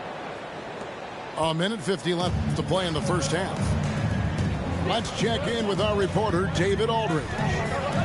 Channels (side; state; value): both; identical; correlation 1.00